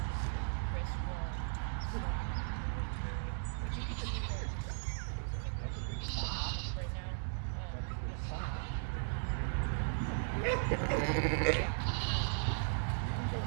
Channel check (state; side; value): silent; left; digital silence